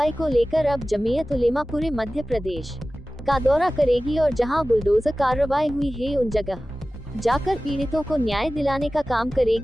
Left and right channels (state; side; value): normal; both; correlation 0.96